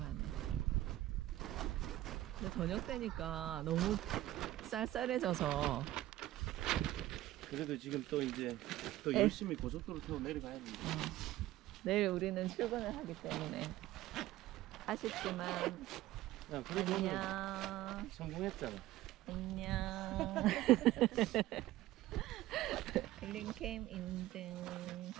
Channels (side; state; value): left; quieter; 15.5 dB